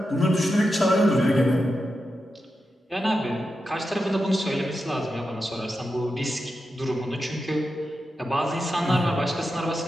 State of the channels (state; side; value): normal; both; correlation 0.89